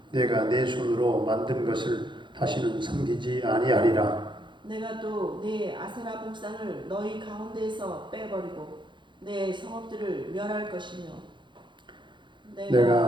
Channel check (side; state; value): left; late; 0.23 ms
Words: 내가 내 손으로 만든 것을 다시는 섬기지 아니하리라. 내가 또 내 아세라 목상을 너희 가운데에서 빼버리고 내 성읍들을 멸할 것이며